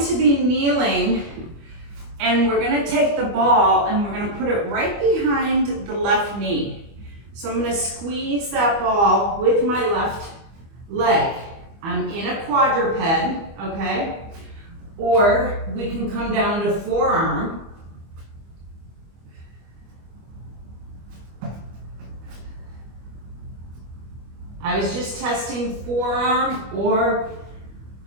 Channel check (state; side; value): late; left; 25 ms